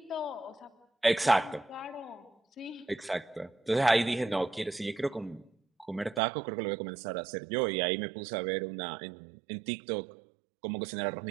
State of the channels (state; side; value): drops out; left; at 6.2 s